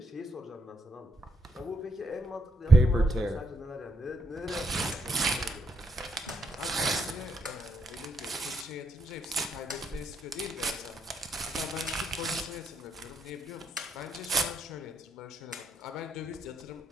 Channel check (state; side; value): normal; both; correlation 0.76